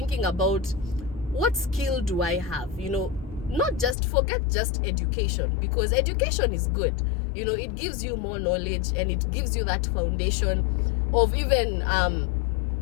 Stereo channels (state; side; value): drops out; right; at 4.0 s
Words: about what skill do I have, not just forget just education, because education is good, it gives you more knowledge and it gives you that foundation of even